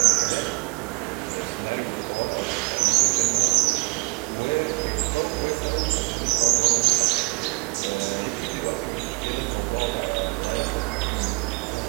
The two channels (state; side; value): quieter; left; 28.8 dB